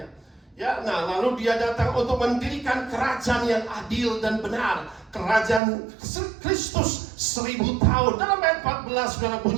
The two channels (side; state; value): left; drops out; at 5.6 s